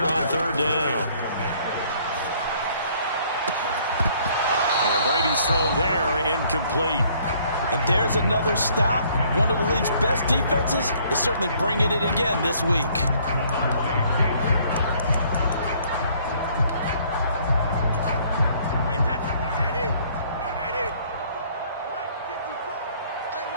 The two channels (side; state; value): both; inverted; correlation -0.61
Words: on third down. And Brady's throw there, incomplete. And there's another stop. One of the league's best defenses is certainly bringing it again this week.